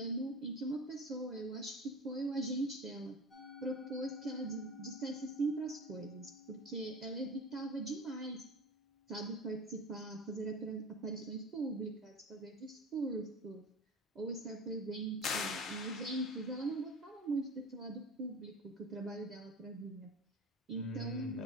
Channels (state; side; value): normal; both; correlation 0.33